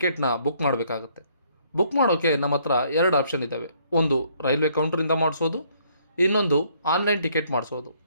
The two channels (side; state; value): both; inverted; correlation -0.66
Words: ಬುಕ್ ಮಾಡಬೇಕಾಗುತ್ತೆ. ಬುಕ್ ಮಾಡೋಕ್ಕೆ ನಮ್ಮ ಹತ್ರ ಎರಡು ಆಪ್ಷನ್ ಇದ್ದಾವೆ. ಒಂದು ರೈಲ್ವೆ ಕೌಂಟ್ರಿಂದ ಮಾಡಿಸೋದು, ಇನ್ನೊಂದು ಆನ್ಲೈನ್ ಟಿಕೆಟ್ ಮಾಡಿಸೋದು.